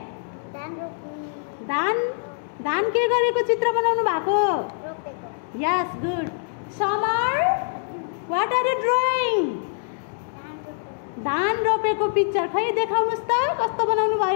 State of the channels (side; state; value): right; silent; digital silence